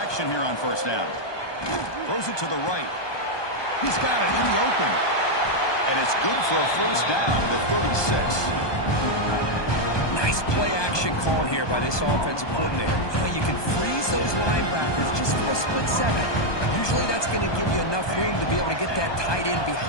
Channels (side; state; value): right; late; 1.2 ms